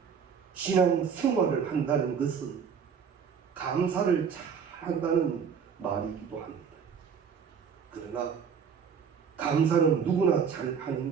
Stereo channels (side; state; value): left; quieter; 6.8 dB